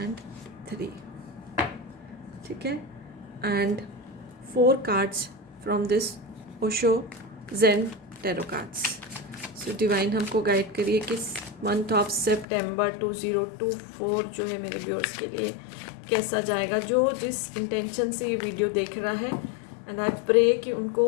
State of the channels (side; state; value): right; drops out; at 12.5 s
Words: 3। ठीक है, and 4 cards from this Osho Zen tarot cards. So divine हमको गाइड करिए कि मंथ ऑफ सितंबर 2024 जो है मेरे व्यूअर्स के लिए कैसा जाएगा, जो जिस इंटेंशन से ये वीडियो देख रहा है। एंड आई प्रे कि